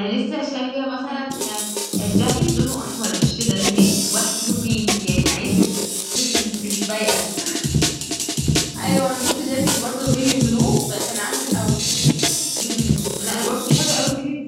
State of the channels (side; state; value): both; identical; correlation 1.00